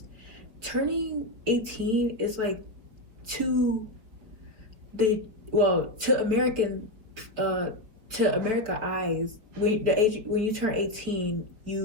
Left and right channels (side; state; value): left; late; 4.7 ms